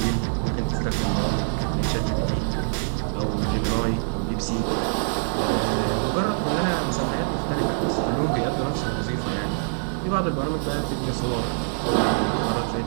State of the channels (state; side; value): silent; left; digital silence